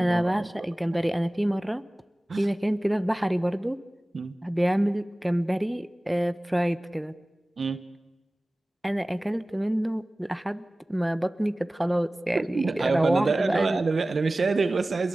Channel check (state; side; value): normal; both; correlation 0.98